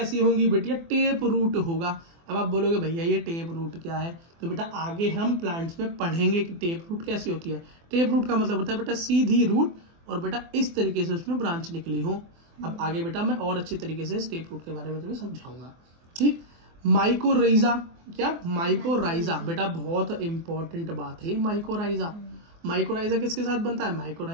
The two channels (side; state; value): left; late; 24 ms